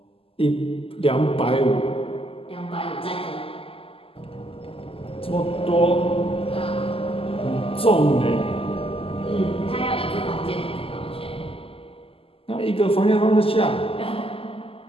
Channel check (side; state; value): right; late; 0.27 ms